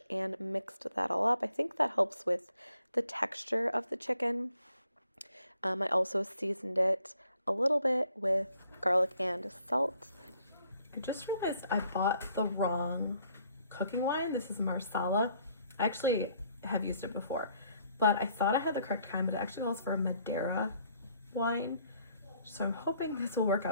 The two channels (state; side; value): inverted; both; correlation -0.66